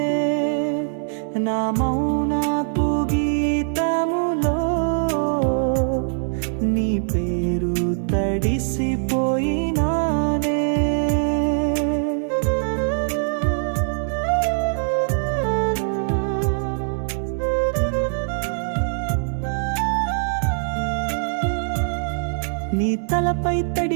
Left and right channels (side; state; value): left; silent; 64 dB below the other